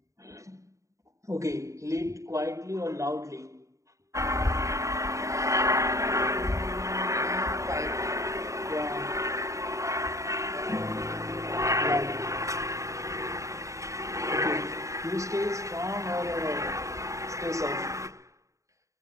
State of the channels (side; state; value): left; late; 0.15 ms